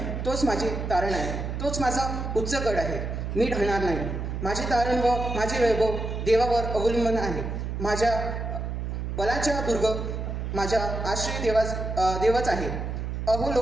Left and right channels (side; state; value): right; noise; hum, 4 dB below the sound